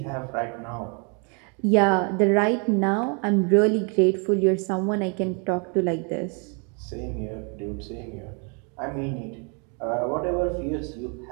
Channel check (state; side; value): quieter; left; 36.4 dB